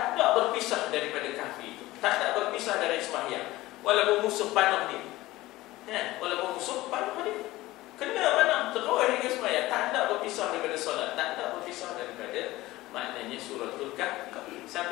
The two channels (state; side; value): quieter; right; 17.9 dB